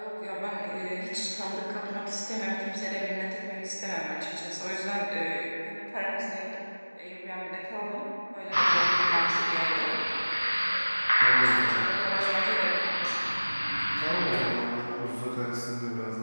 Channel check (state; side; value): inverted; both; correlation -1.00